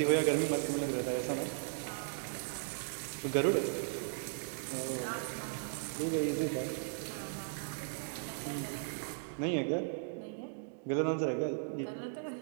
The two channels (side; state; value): left; silent; digital silence